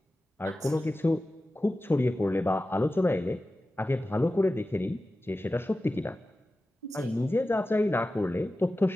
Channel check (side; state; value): both; normal; correlation 0.94